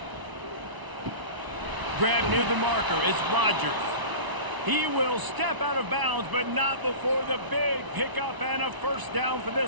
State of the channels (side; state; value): left; late; 1.0 ms